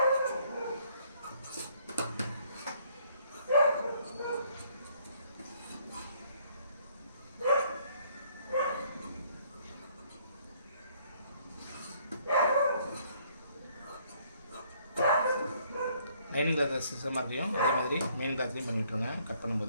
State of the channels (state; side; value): inverted; both; correlation -0.65